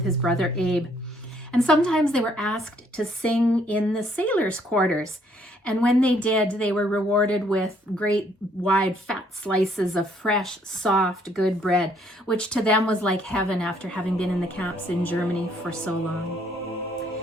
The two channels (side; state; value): both; normal; correlation 0.66